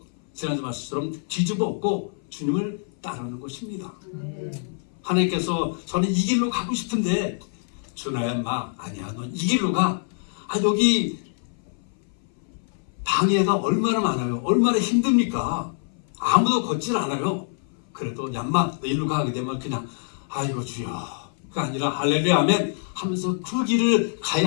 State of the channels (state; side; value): silent; right; 58 dB below the other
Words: 지난주 말씀처럼 뒤집어 엎고 주님을 따르는 것입니다. 하나님께서 저는 이 길로 가고 싶은데 준하야 마 아니야 넌 이 길로 가. 여기 방해가 얼마나 많아요. 얼마나 힘듭니까? 아무도 걷질 않아요. 그래도 얌마 너 일로 가게 되면 그냥 아이고 주여 그가 아니라 할렐루야 아멘 하면서 그 길을